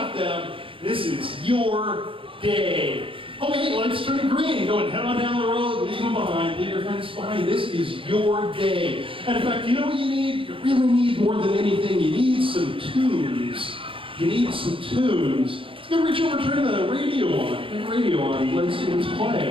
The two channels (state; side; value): late; left; 0.25 ms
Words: them. This is your day. Okay, lights turn green. Go and head on down the road. Leave them behind. Leave your friends behind. This is your day. And in fact, you know what you need? You really need more than anything. You need some tunes. You need some tunes. Gonna reach over, turn the radio on. Turn the radio on. Let's see what's